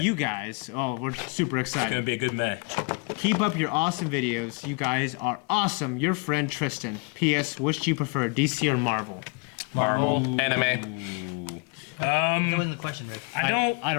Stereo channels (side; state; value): right; quieter; 32.7 dB